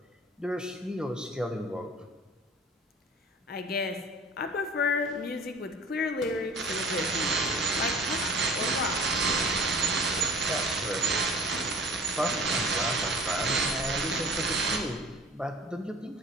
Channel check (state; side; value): normal; both; correlation 0.44